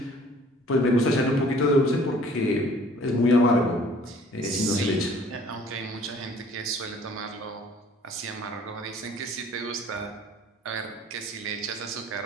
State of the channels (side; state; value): both; normal; correlation 0.54